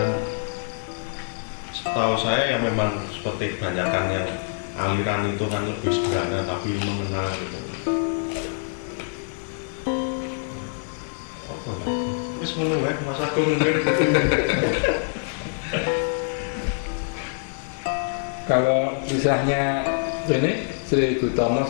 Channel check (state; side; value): silent; right; digital silence